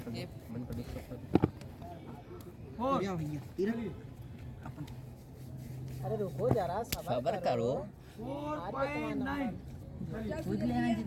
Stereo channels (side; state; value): both; identical; correlation 1.00